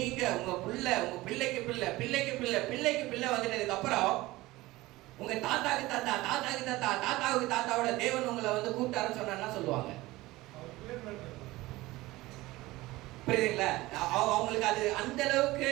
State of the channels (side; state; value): left; quieter; 19.1 dB